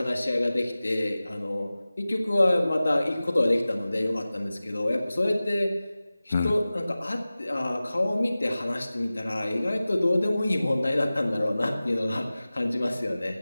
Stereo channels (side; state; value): both; inverted; correlation -0.97